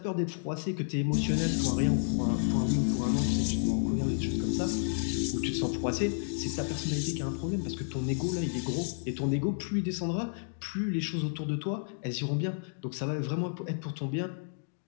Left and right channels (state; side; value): silent; right; digital silence